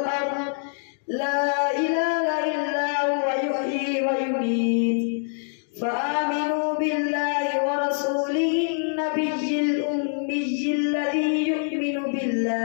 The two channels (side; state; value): right; silent; digital silence